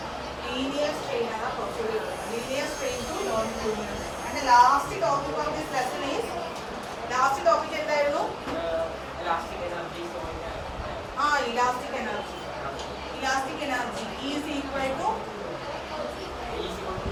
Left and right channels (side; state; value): both; identical; correlation 1.00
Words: Linear strain ആണ് കുറച്ചുകൂടി ഉള്ളത്. Linear strain to longitudinal. And last topic of this lesson is last topic എന്തായിരുന്നു? Elastic energy. Elastic energy is equal to